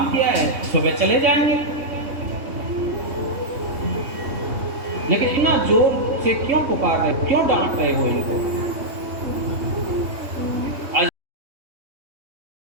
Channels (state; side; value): late; left; 3.2 ms